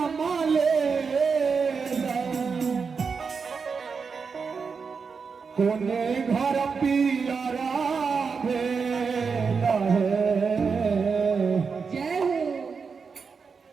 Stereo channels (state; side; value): quieter; left; 5.4 dB